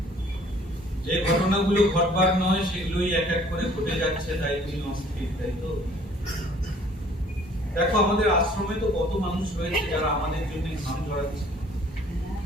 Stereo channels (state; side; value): normal; both; correlation 0.56